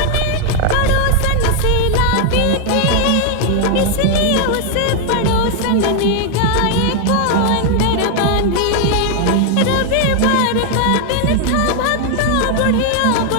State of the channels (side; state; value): both; different; correlation 0.01